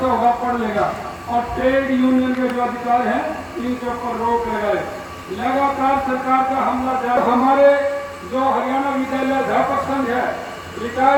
होगा पढ़ लेगा। और ट्रेड यूनियन के जो अधिकार हैं इनके ऊपर रोक लगाए। लगातार सरकार का हमला जारी। हमारे जो हरियाणा विद्यालय अध्यापक संघ है,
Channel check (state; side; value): identical; both; correlation 1.00